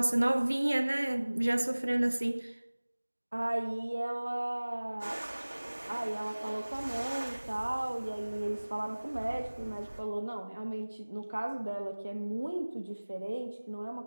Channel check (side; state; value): both; inverted; correlation -1.00